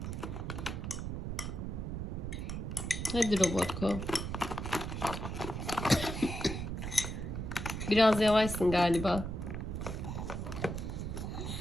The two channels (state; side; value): noise; right; rumble, 4 dB below the sound